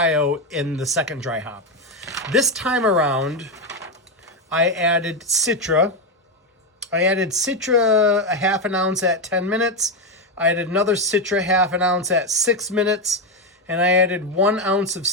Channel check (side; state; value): both; normal; correlation 0.08